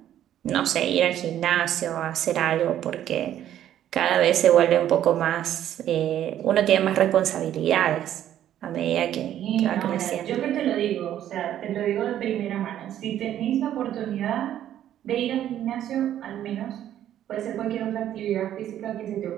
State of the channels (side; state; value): left; quieter; 11.4 dB